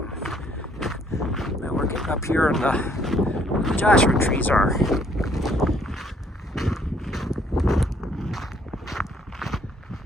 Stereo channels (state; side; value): normal; both; correlation 0.65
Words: Now we're getting up here and the Joshua trees are.